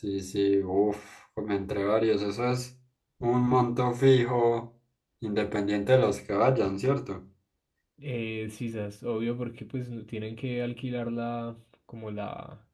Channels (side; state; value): both; identical; correlation 1.00